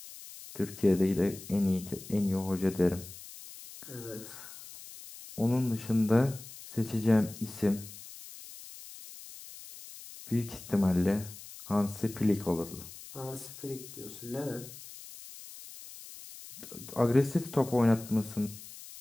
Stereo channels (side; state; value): left; noise; hiss, 15 dB below the sound